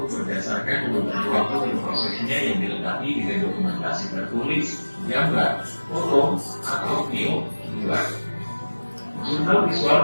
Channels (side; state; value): both; inverted; correlation -1.00